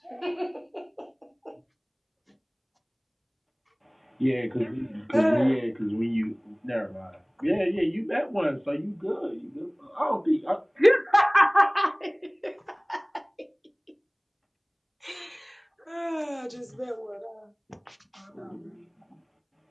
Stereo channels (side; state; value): both; identical; correlation 1.00